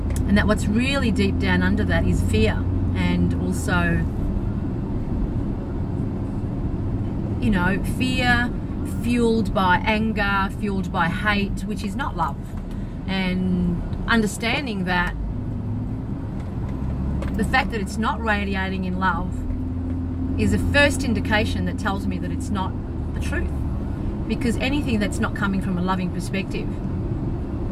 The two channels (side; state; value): both; identical; correlation 1.00